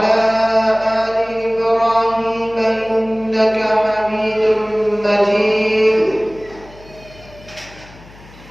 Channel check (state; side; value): noise; left; hum, 22 dB below the sound